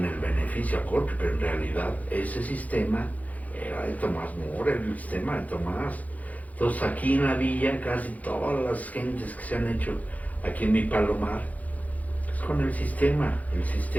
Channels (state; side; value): late; right; 0.075 ms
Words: el beneficio a Corpi, pero en realidad ese sistema era de Tomás Mora, el sistema de Tomás. Entonces aquí en la villa casi todas las gentes que se han hecho aquí en mi palomar es con el sistema